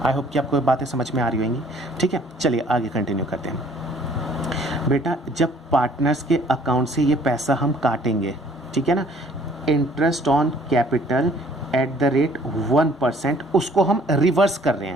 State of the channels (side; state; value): both; normal; correlation 0.57